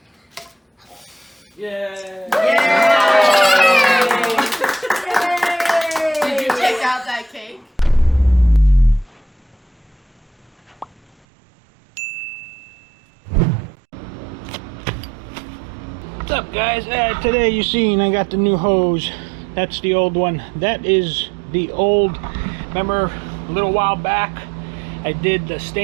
Yay! Yay! Did you take out that cake? What's up, guys? Today you seen I got the new hose. That's the old one. That is the old. Remember a little while back I did the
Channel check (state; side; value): drops out; left; at 11.1 s